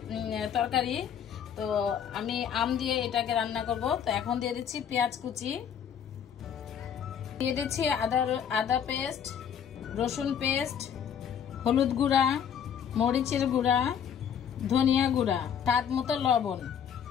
তরকারি। তো আমি আম দিয়ে এটাকে রান্না করব। তো এখন দিয়ে দিচ্ছি পেঁয়াজ কুচি, দিয়ে দিচ্ছি আদা পেস্ট, রসুন পেস্ট, হলুদ গুঁড়া, মরিচের গুঁড়া, ধনিয়া গুঁড়া, স্বাদ মতো লবণ,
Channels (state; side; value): quieter; right; 8.3 dB